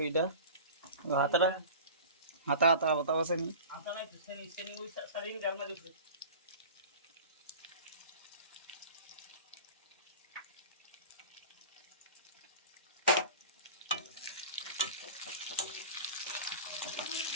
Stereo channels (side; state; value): both; inverted; correlation -0.37